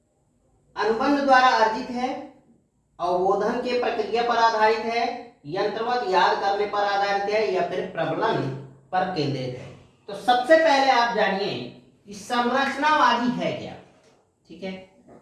अनुबंध द्वारा अर्जित है, अवबोधन के प्रक्रिया पर आधारित है, यंत्रवत याद करने पर आधारित है या फिर प्रबलन पर केंद्रित है। तो सबसे पहले आप जानिए कि संरचनावादी है क्या। ठीक है,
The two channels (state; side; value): identical; both; correlation 1.00